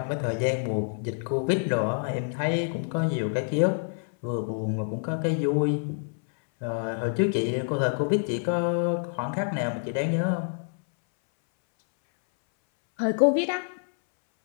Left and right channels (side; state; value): right; silent; 60 dB below the other